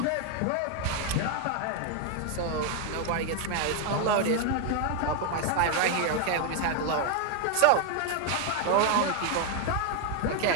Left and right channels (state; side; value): different; both; correlation 0.01